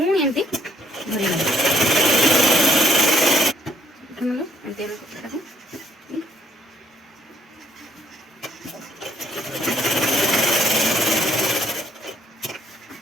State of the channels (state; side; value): normal; both; correlation 0.68